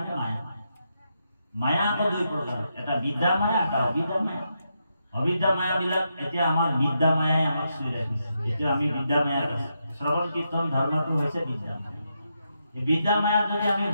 মায়া। মায়া আকৌ দুই প্ৰকাৰ, এটা বিদ্যা মায়া, এটা অবিদ্যা মায়া। অবিদ্যা মায়াবিলাক এতিয়া আমাৰ বিদ্যা মায়াই আমাক চুই ৰাখিছে। এতিয়া আমি বিদ্যা মায়াত আছো। শ্ৰৱণ কীৰ্তন ধৰ্মটো হৈছে বিদ্যা মায়া। এই বিদ্যা মায়াত যদি আমি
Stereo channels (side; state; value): both; inverted; correlation -0.83